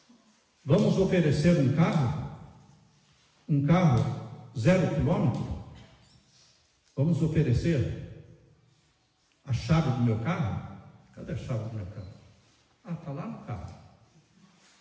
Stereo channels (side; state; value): both; identical; correlation 1.00